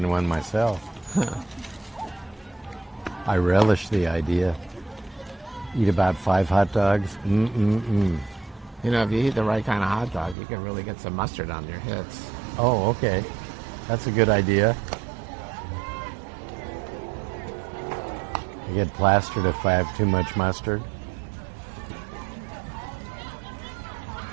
one myself. I relish the idea. Eat about 5 hot dogs. You know, if you eat the right kind of hot dog, you can really get some mustard on your hits. Oh, okay. That's a good idea. I get plastered if I have too much mustard.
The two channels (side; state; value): left; drops out; at 10.4 s